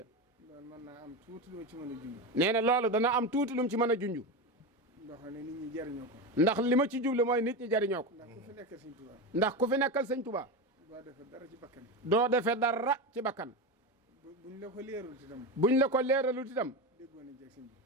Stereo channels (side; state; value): both; normal; correlation 0.18